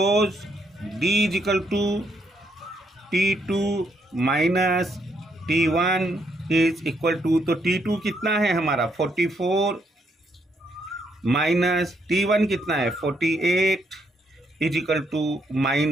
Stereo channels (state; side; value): normal; both; correlation 0.74